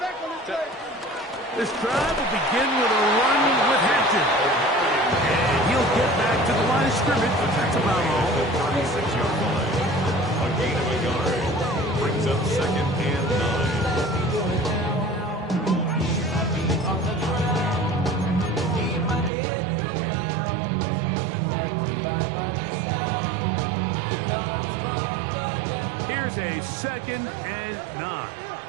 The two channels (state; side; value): drops out; left; at 19.3 s